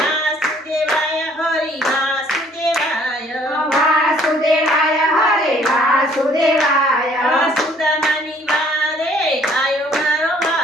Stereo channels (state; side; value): normal; both; correlation 0.60